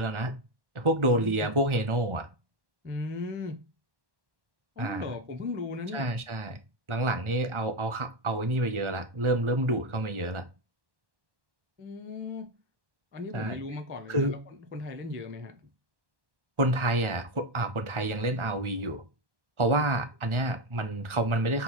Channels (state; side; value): late; left; 1.4 ms